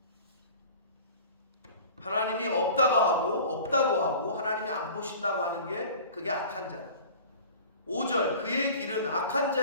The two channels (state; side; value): inverted; both; correlation -0.42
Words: 하나님이 없다고 하고 하나님이 안 보신다고 하는 게 그게 악한 자다. 5절 그의 길은 악한